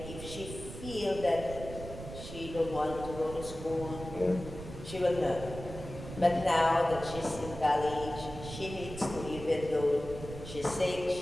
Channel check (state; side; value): noise; right; rumble, 11 dB below the sound